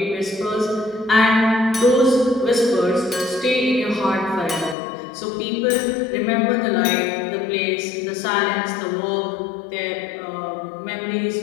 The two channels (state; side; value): drops out; right; at 4.8 s